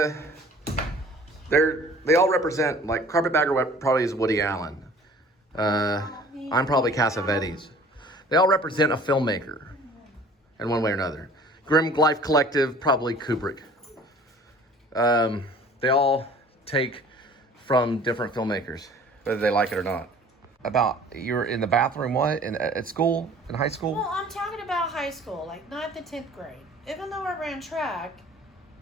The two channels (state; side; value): normal; both; correlation 0.50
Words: all represent, like Carpetbagger probably is Woody Allen. I'm probably Cassavetes. They all represent a filmmaker in one way or another. Grim Life Collective, probably Kubrick. They all take from different filmmakers, whether they like it or not. About, you were in the bathroom, what? At school? In high school? Well, I'm talking about high school, like 9th and 10th grade. Even though I ran track,